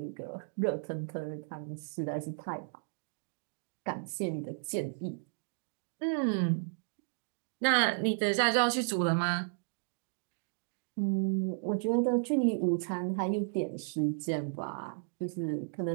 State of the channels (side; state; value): left; silent; digital silence